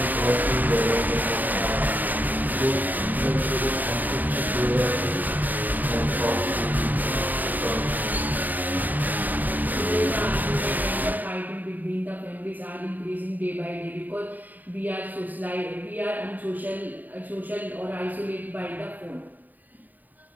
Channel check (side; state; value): left; late; 0.085 ms